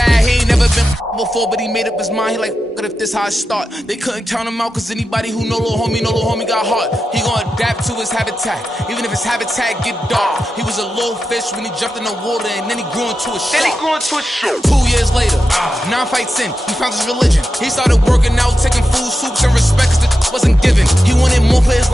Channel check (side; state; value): both; normal; correlation 0.90